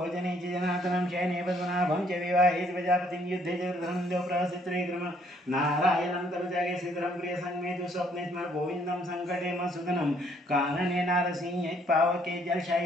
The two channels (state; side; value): normal; both; correlation 0.65